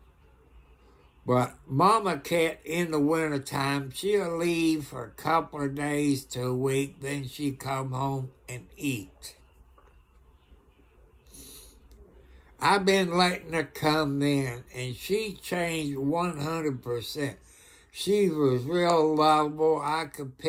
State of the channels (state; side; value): identical; both; correlation 1.00